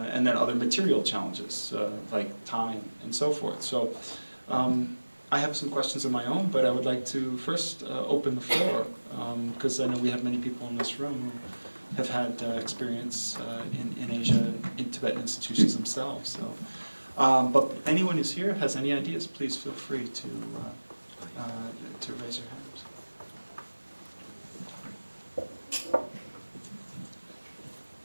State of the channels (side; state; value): both; inverted; correlation -1.00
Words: and then other material challenges like time and so forth. So I have some questions of my own, but I would like to first open the floor, because I know we have many people in this room who have had experience in Asia, in Tibetan institutions themselves. So, but anyone who's here has any ideas, please feel free to raise your hand.